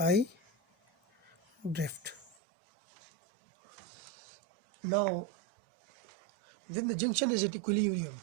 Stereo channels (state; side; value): drops out; left; at 2.4 s